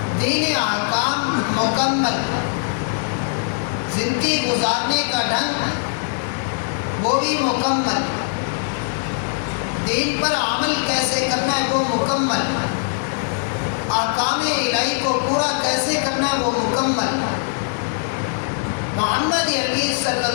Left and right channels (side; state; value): right; silent; digital silence